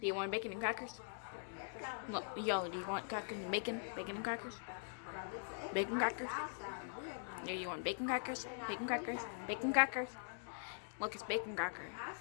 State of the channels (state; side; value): silent; right; digital silence